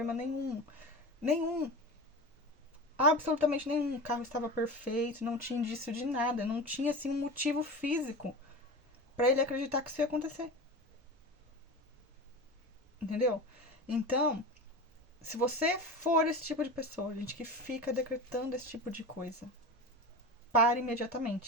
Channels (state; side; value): normal; both; correlation 0.28